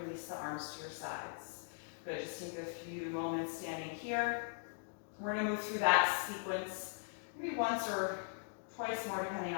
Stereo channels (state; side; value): silent; right; digital silence